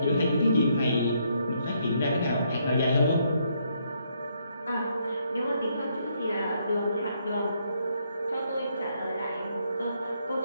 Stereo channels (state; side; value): inverted; both; correlation -0.73